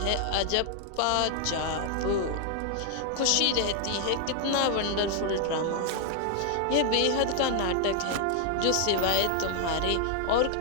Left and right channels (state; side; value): different; both; correlation 0.00